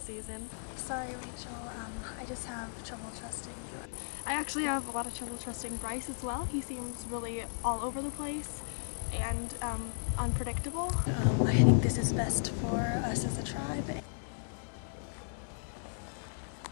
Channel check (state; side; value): silent; right; digital silence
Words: season. Sorry, Rachel. I just have trouble trusting you. I actually have a lot of trouble trusting Bryce as well. He seems really all over the place and unpredictable. I think this is best for us as a tribe.